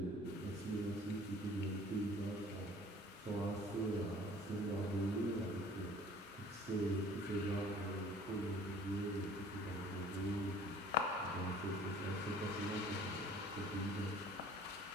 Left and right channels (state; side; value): normal; both; correlation 0.50